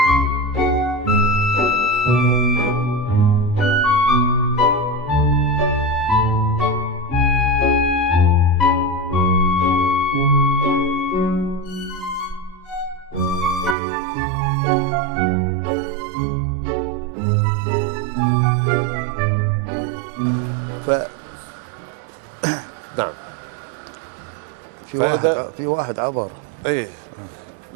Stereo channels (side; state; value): left; drops out; at 13.8 s